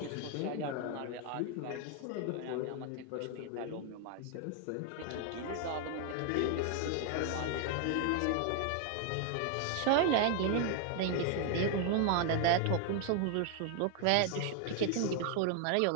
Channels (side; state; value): both; different; correlation 0.00